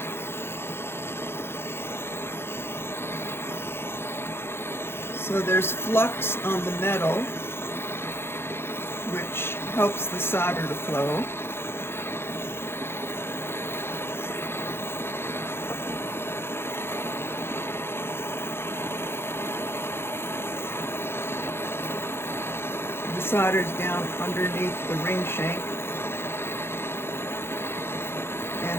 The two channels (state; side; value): late; right; 0.11 ms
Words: So there's flux on the metal, which helps the solder to flow. The solder's down underneath the ring shank,